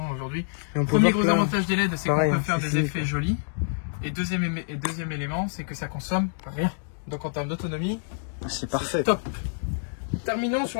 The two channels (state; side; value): silent; right; digital silence